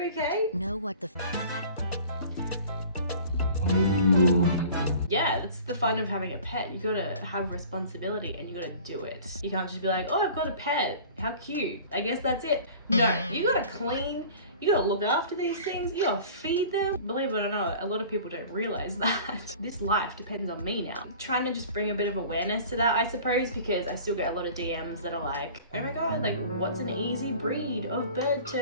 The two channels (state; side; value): inverted; both; correlation -0.44